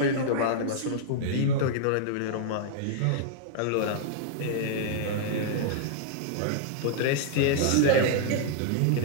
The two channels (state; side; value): different; both; correlation -0.01